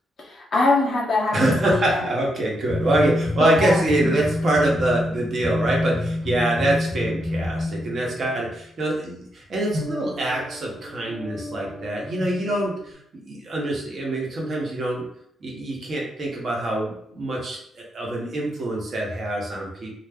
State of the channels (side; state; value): both; normal; correlation 0.80